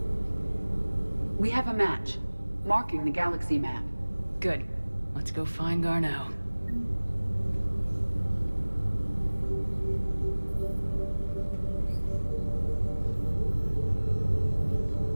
We have a match, marking the galaxy map. Good. Let's go find Garneau.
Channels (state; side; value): inverted; both; correlation -1.00